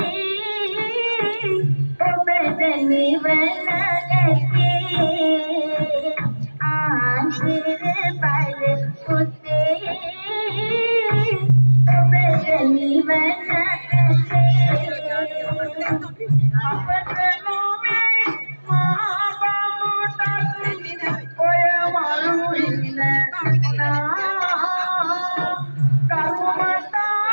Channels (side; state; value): both; inverted; correlation -1.00